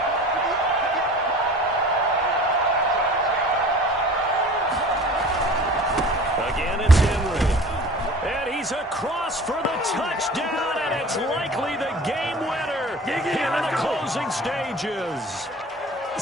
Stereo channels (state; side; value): normal; both; correlation 0.42